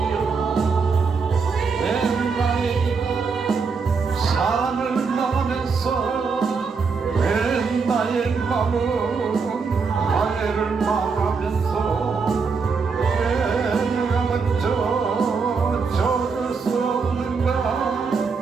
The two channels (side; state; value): left; quieter; 5.0 dB